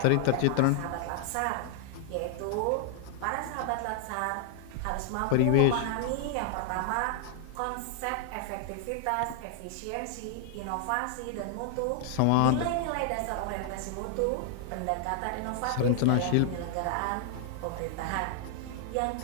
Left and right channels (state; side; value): different; both; correlation 0.00